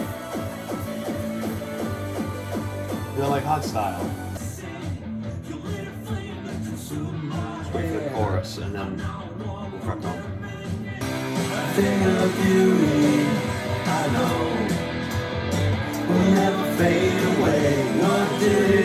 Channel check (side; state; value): both; identical; correlation 1.00